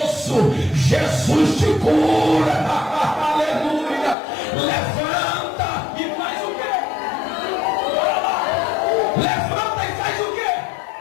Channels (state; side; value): drops out; right; at 4.2 s